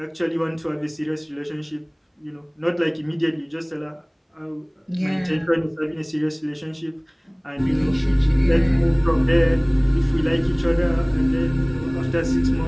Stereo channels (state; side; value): identical; both; correlation 1.00